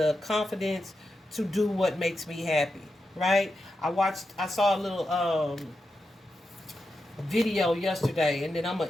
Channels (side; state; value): both; normal; correlation 0.88